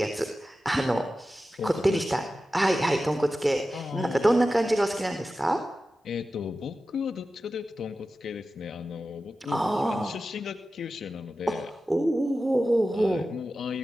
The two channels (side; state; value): both; normal; correlation 0.94